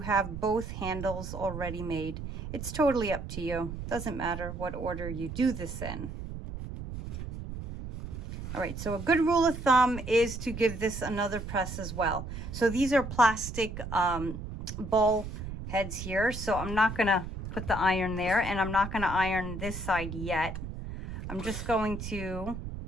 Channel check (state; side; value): noise; right; rumble, 8 dB below the sound